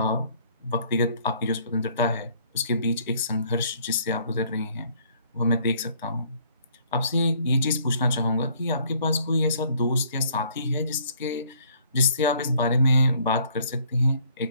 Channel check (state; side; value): inverted; both; correlation -0.61